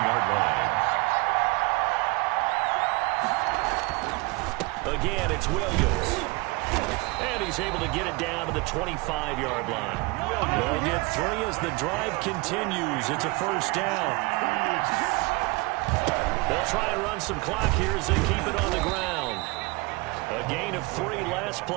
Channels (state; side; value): quieter; left; 25.9 dB